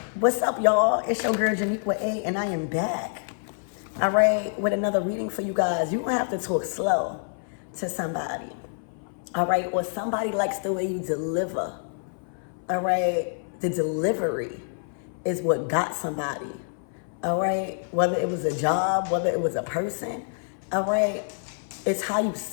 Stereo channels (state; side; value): silent; right; 58 dB below the other